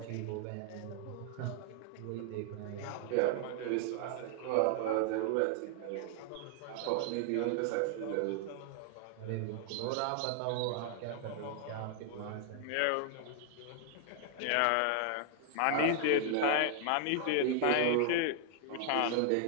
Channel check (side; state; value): both; different; correlation 0.00